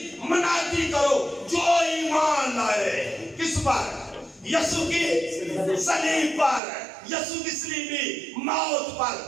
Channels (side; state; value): left; drops out; at 6.6 s